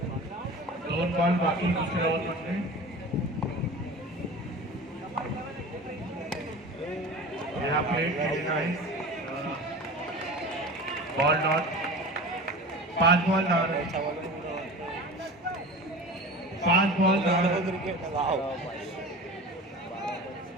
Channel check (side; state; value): both; normal; correlation 0.35